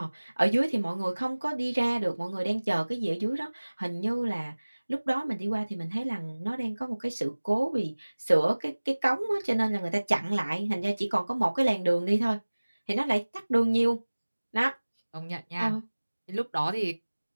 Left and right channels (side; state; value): both; inverted; correlation -1.00